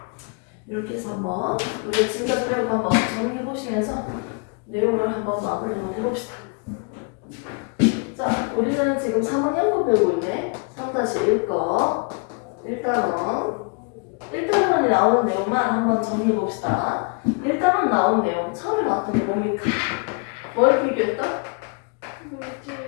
이렇게 해서 한번 우리가 지금까지 배운 거 한번 정리해 보시면서 내용을 한번 마무리 한번 해봅시다. 자, 우리는 지금 3학년 거 배우고 있네. 3-1 거. 1단원에 나오는 내용만 한번 정리해 봅시다. 1단원 나온 내용 처음에 나왔던 게 뭡니까? 뭘 비교했다?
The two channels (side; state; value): right; quieter; 35.1 dB